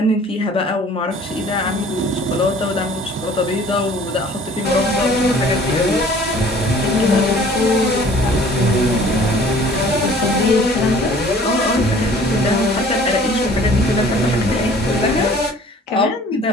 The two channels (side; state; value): both; normal; correlation 0.51